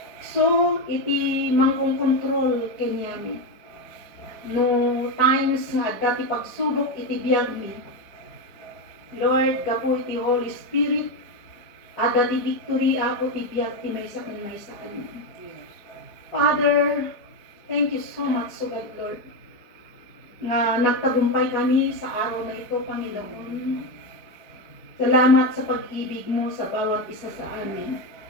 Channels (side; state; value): right; late; 4.6 ms